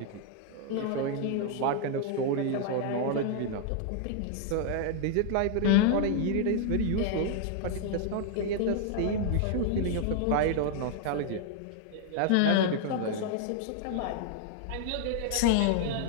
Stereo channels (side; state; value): both; different; correlation 0.00